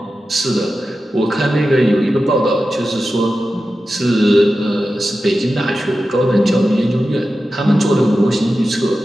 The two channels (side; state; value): both; normal; correlation 0.93